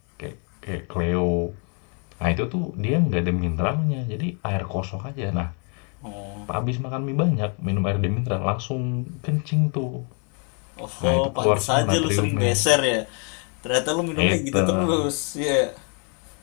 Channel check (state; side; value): quieter; right; 38.6 dB